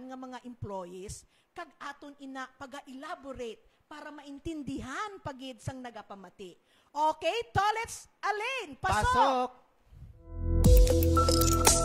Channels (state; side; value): identical; both; correlation 1.00